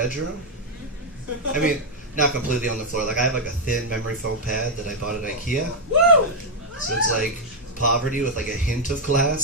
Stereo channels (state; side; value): normal; both; correlation 0.00